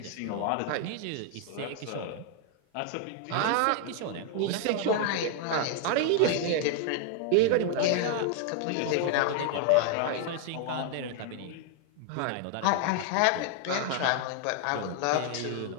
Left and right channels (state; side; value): different; both; correlation 0.00